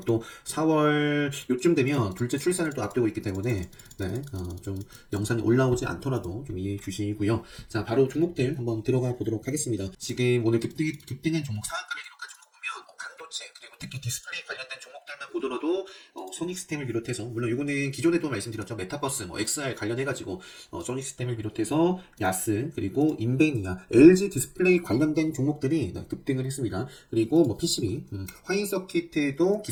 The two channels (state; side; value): identical; both; correlation 1.00